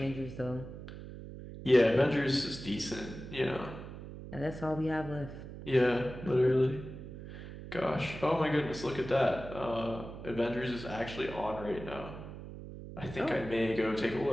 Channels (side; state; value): right; noise; hum, 12 dB below the sound